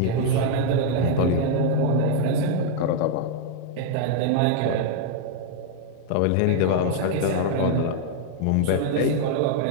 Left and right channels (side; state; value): both; different; correlation 0.00